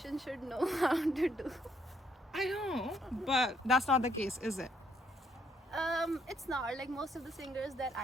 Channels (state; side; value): normal; both; correlation 0.71